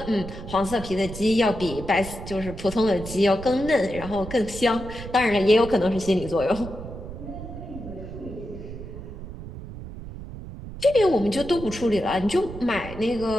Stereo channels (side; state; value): right; noise; rumble, 11 dB below the sound